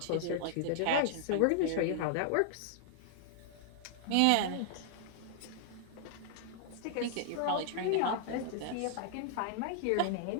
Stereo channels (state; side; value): different; both; correlation -0.01